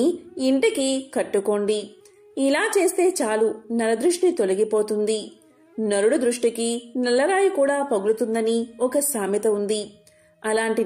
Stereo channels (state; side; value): identical; both; correlation 1.00